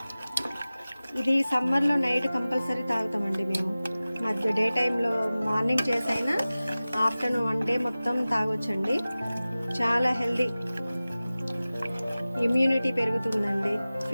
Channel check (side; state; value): both; inverted; correlation -0.97